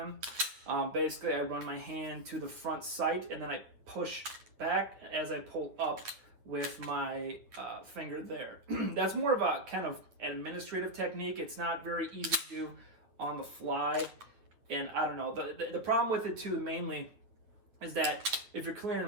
Basically, I run my hand to the front sight, and then I push back as I pull up with my finger there. That's more of a kind of administrative technique. It's not very easy to do on the fly. And I don't know, the problem with it too mainly is that if you're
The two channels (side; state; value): left; late; 9.3 ms